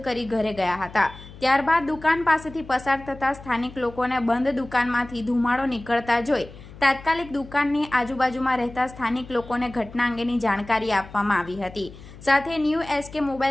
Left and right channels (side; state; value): left; noise; hum, 18 dB below the sound